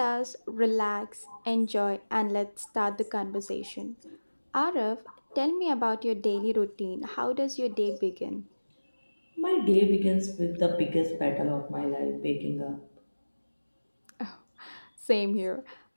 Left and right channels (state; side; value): inverted; both; correlation -1.00